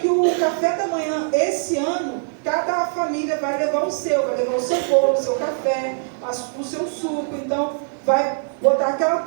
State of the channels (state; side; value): silent; left; digital silence